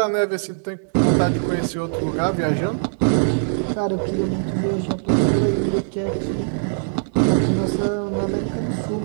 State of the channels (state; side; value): silent; left; digital silence